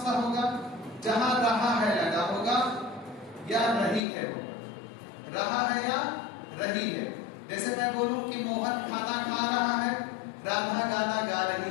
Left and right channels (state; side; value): drops out; right; at 4.0 s